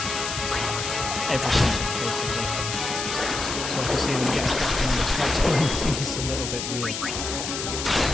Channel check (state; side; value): noise; left; hiss, 5 dB below the sound